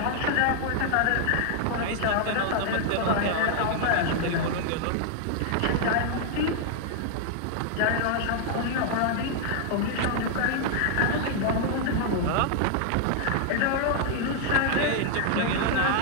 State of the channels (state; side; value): different; both; correlation 0.00